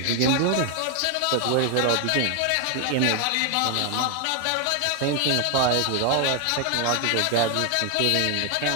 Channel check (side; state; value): both; different; correlation 0.01